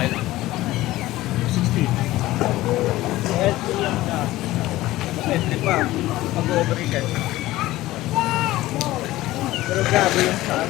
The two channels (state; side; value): quieter; right; 16.8 dB